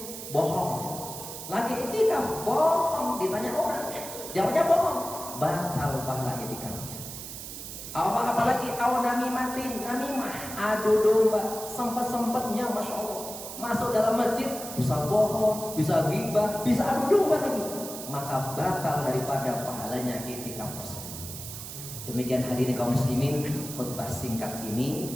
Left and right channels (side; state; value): right; noise; hiss, 10 dB below the sound